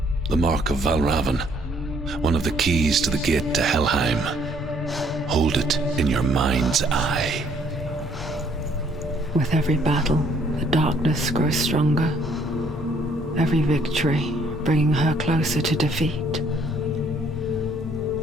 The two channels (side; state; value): both; normal; correlation 0.64